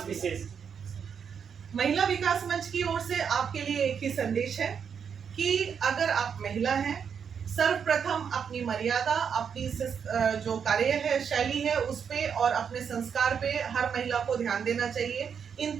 विशेष। महिला विकास मंच की ओर से आपके लिए एक ही संदेश है कि अगर आप महिला हैं, सर्वप्रथम अपनी मर्यादा, अपनी जो कार्य है, शैली है, उस पे और अपने संस्कार पे हर महिला को ध्यान देना चाहिए। इन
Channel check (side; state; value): left; quieter; 7.1 dB